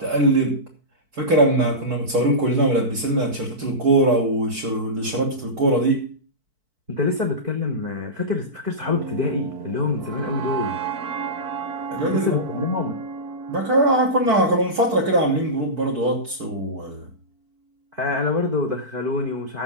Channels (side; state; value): left; late; 4.5 ms